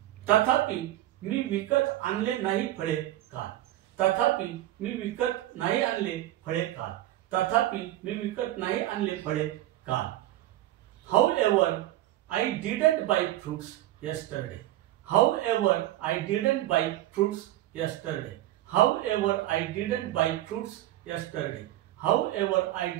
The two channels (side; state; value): left; quieter; 14.6 dB